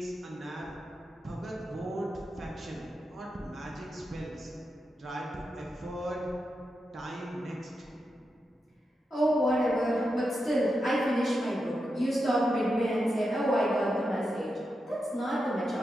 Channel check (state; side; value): normal; both; correlation 0.88